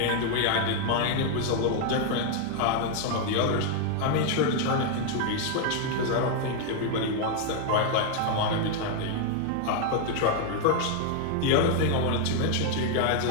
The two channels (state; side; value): different; both; correlation 0.00